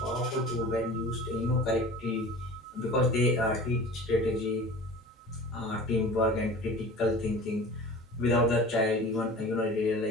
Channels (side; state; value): both; normal; correlation 0.39